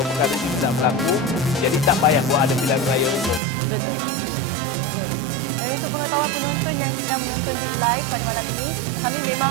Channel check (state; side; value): drops out; left; at 3.4 s